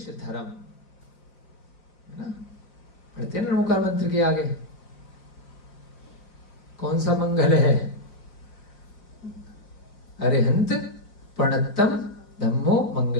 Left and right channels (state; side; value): late; right; 5.0 ms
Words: धर्म, है ना। पढ़ते हैं नमोकार मंत्र के आगे कौन सा मंगल है? अरिहंत प्रणतम धम्मो